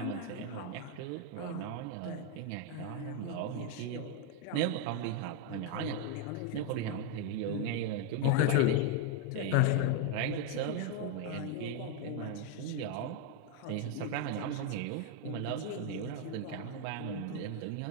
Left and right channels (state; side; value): different; both; correlation 0.01